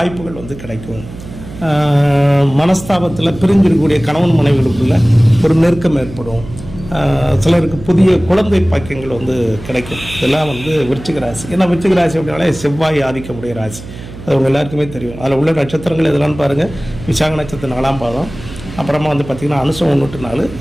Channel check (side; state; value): right; noise; hum, 14 dB below the sound